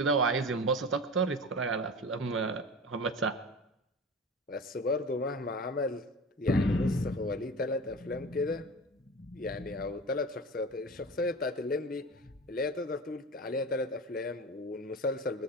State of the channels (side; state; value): both; normal; correlation 0.32